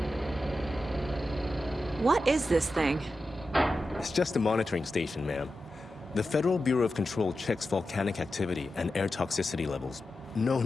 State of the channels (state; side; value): normal; both; correlation 0.91